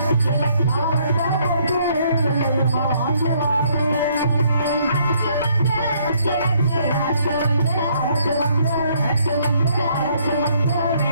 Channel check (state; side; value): inverted; both; correlation -0.67